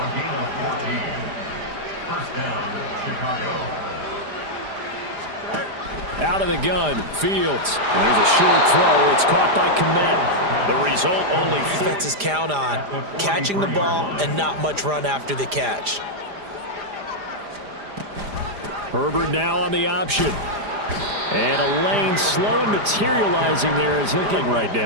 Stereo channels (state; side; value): late; left; 4.9 ms